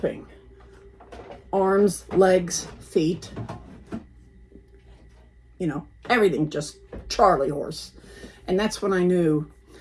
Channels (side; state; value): both; identical; correlation 1.00